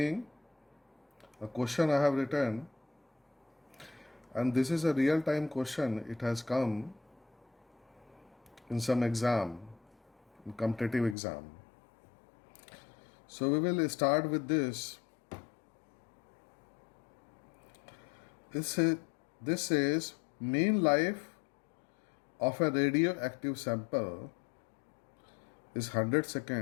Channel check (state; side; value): drops out; right; at 11.2 s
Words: a question I have written, and this is a real-time question. It has come in some exam, in competitive exam. So we will start with this. This says mean life of a radioactive sample is 100